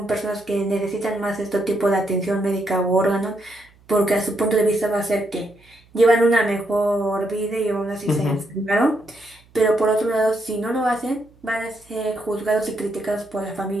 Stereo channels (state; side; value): noise; right; hum, 29 dB below the sound